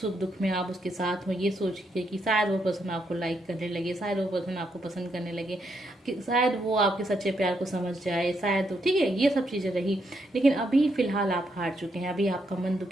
सुख दुख में आप उसके साथ हो, ये सोच के कि शायद वो पर्सन आपको लाइक करने लगे, शायद वो पर्सन आपको पसंद करने लगे, कि शायद वो आपके सच्चे प्यार को समझ जाए, शायद, ठीक है, ये सब चीज़ें रही। लेकिन अभी फिलहाल आप हार चुके हैं, अभी आपका मन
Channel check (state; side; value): normal; both; correlation 0.78